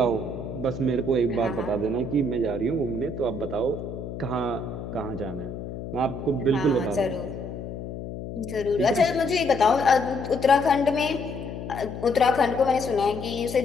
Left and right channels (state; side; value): noise; left; hum, 8 dB below the sound